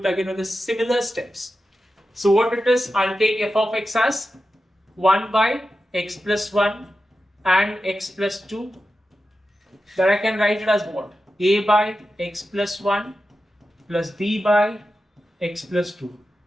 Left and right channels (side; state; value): both; normal; correlation 0.91